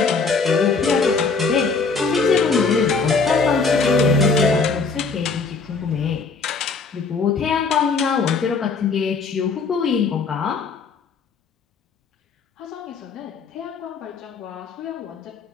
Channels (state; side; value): quieter; right; 4.7 dB